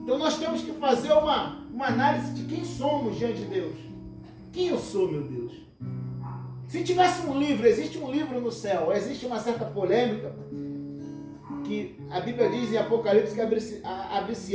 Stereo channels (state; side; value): identical; both; correlation 1.00